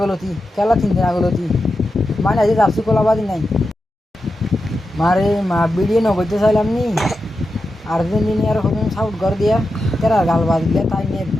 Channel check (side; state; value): both; normal; correlation 0.90